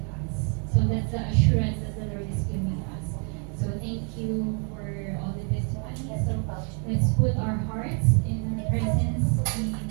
us. So that's the assurance that the Lord is giving us. So thank you for all the testimonies. So let's put our hearts in the presence of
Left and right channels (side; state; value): left; quieter; 39.9 dB